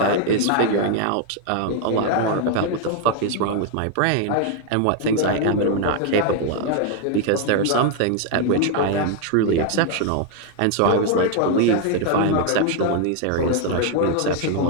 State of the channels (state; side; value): different; both; correlation 0.01